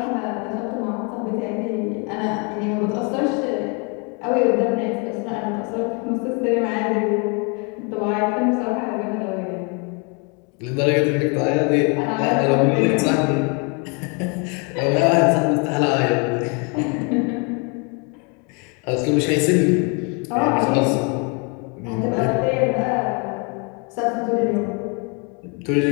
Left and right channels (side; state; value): right; quieter; 33.9 dB